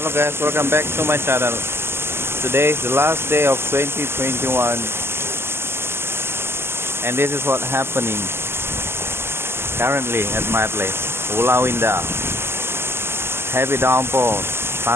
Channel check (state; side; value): late; left; 0.12 ms